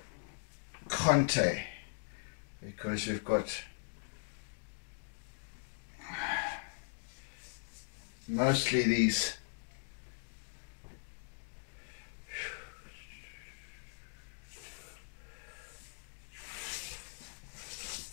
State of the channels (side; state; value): right; silent; digital silence